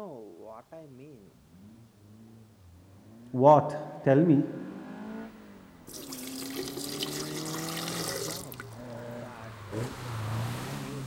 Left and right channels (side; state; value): both; identical; correlation 1.00